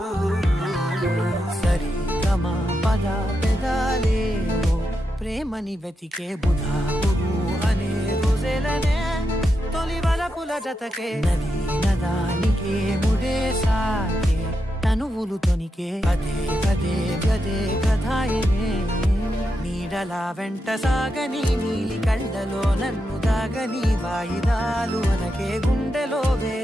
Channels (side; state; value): both; normal; correlation 0.85